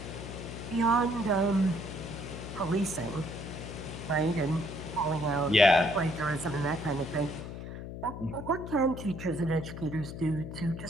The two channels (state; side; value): noise; left; hum, 9 dB below the sound